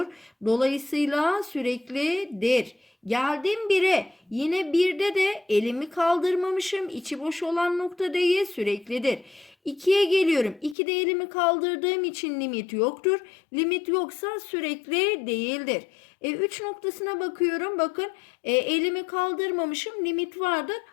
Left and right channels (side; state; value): right; drops out; at 10.8 s